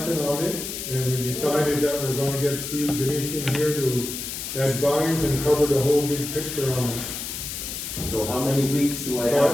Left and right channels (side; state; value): left; noise; hiss, 6 dB below the sound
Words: on it, and we decided that we're gonna get Steve Ganeshan here to advise and cover the whole big picture on it. So how many weeks do I